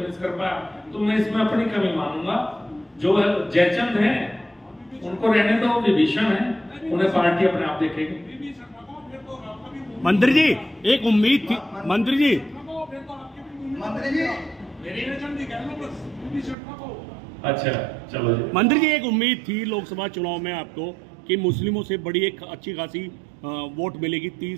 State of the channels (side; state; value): left; drops out; at 16.6 s